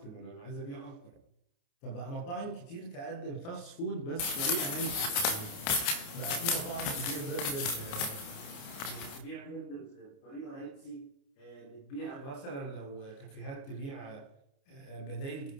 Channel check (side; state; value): right; late; 29 ms